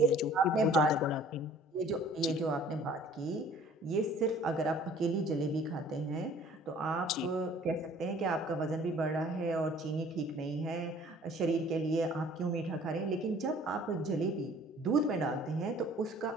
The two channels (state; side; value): normal; both; correlation 0.53